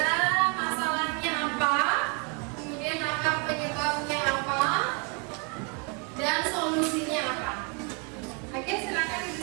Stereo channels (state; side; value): quieter; left; 34.8 dB